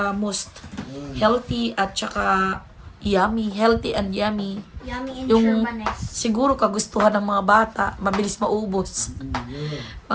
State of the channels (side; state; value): both; identical; correlation 1.00